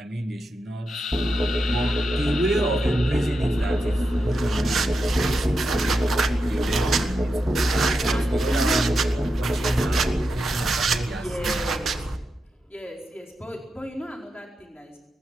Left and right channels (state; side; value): normal; both; correlation 0.87